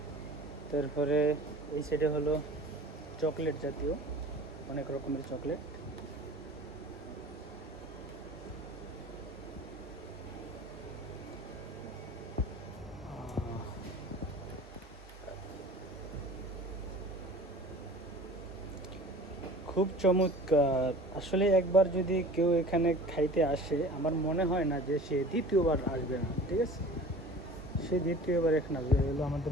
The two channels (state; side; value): normal; both; correlation 0.42